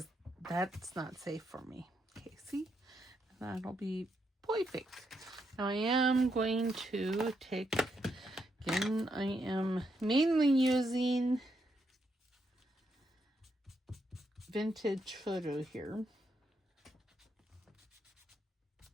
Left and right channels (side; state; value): both; normal; correlation 0.79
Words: that's not safe for me. Okay, see? That'll be perfect. Now I am going to take, again, I am mainly using vintage photo here.